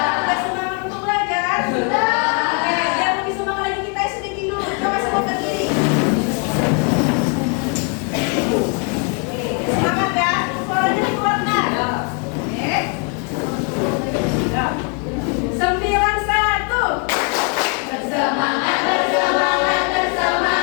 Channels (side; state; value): right; quieter; 35.7 dB